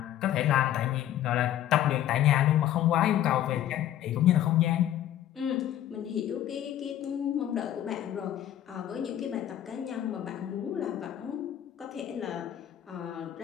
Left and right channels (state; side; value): quieter; right; 11.8 dB